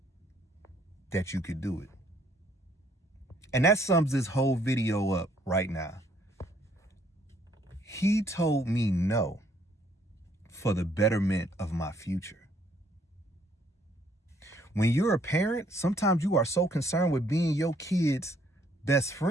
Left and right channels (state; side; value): normal; both; correlation 0.65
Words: that you could do it. And that sums this whole video up right now. He told me no for the betterment of my future. When you're a parent, sometimes you are so concerned with being your kid's best